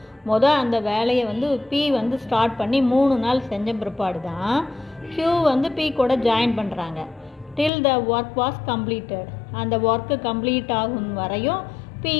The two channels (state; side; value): drops out; right; at 7.7 s